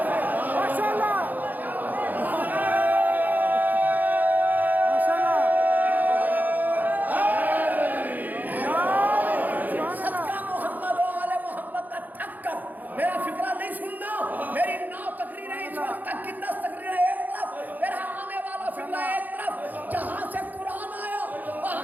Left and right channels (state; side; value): late; left; 0.083 ms